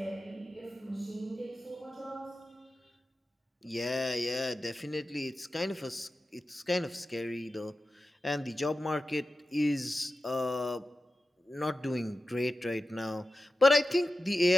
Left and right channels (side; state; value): both; normal; correlation 0.93